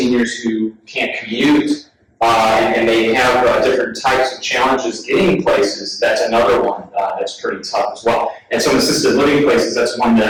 who can't commute, and they have different types of challenges getting places. That's another one that's pretty tough as well. And some assisted living places, that's one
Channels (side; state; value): both; identical; correlation 1.00